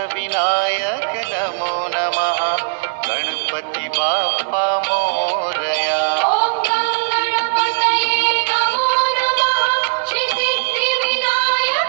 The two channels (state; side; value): silent; left; digital silence